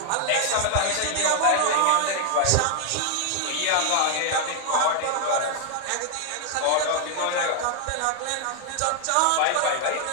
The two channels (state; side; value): different; both; correlation 0.00